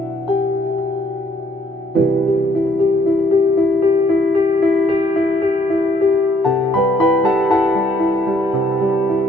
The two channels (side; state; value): both; normal; correlation 0.66